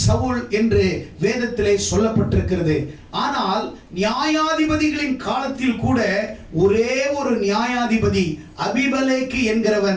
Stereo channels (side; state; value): both; identical; correlation 1.00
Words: சவுல் என்று வேதத்திலே சொல்லப்பட்டிருக்கிறது. ஆனால் நியாயாதிபதிகளின் காலத்தில் கூட ஒரே ஒரு நியாயாதிபதி அபிமெலேக்கு